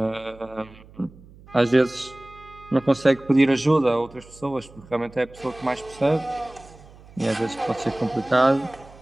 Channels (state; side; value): noise; right; hum, 23 dB below the sound